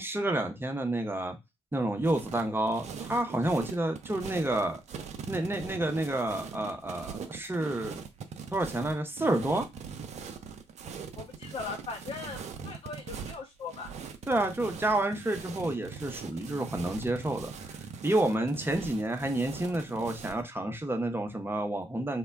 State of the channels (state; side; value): normal; both; correlation 0.79